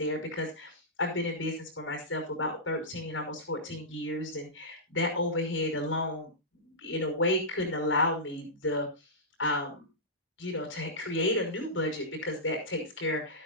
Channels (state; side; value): normal; both; correlation -0.15